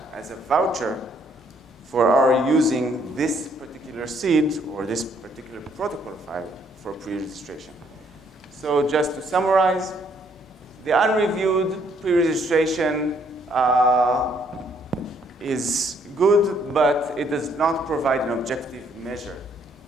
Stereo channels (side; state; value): both; normal; correlation 0.67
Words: as a voucher for our using this particular seed or this particular protocol file for pre-registration. So just to summarize, the unreviewed pre-registration is good, but it does not provide an objective measure